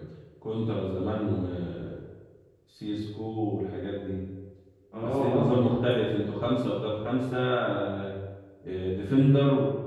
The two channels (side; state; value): both; identical; correlation 1.00